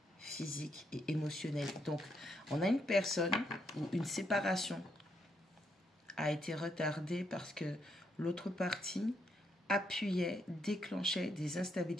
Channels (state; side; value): normal; both; correlation 0.76